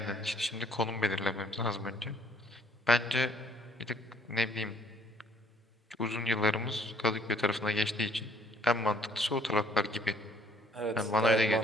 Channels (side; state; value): both; normal; correlation 0.61